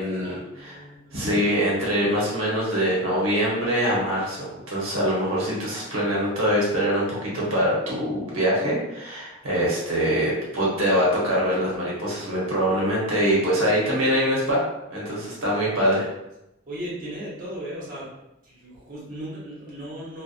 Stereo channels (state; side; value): normal; both; correlation 0.09